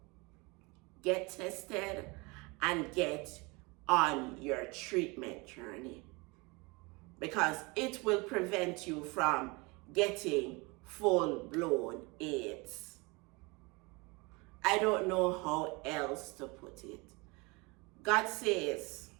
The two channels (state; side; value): quieter; left; 26.7 dB